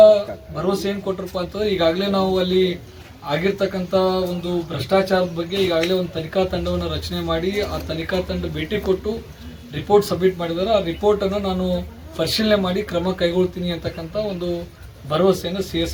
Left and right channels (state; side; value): identical; both; correlation 1.00